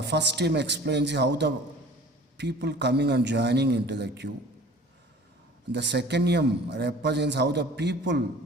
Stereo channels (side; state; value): both; normal; correlation 0.46